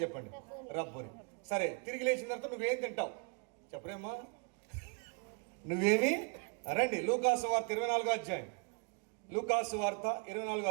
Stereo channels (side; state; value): left; quieter; 34.5 dB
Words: చెప్పండి, రబ్బుని. సరే, తిరిగి లేచిన తర్వాత నువ్వేం తింటావు చెప్పరేమ్మా? నువ్వేమి? రండి, లూకాసు వార్త 24వ అధ్యాయం. లూకాసు వార్త 24వ